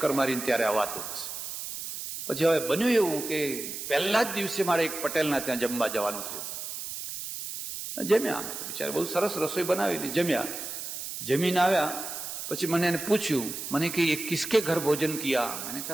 મારીને ત્યારે આ વાતું છે. પછી હવે બન્યું એવું કે પહેલા જ દિવસે મારે એક પટેલના ત્યાં જમવા જવાનું થયું. જમ્યા અમે તો, બિચારા બહુ સરસ રસોઈ બનાવેલી. જમ્યા, જમીને આવ્યા પછી મને એને પૂછ્યું, મને કે ये किसके घर भोजन किया? मैंने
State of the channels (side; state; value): right; noise; hiss, 7 dB below the sound